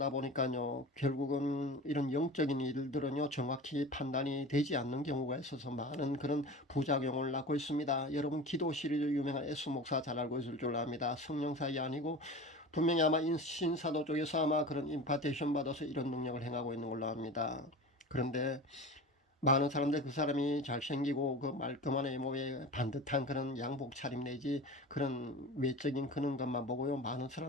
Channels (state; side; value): normal; both; correlation 0.33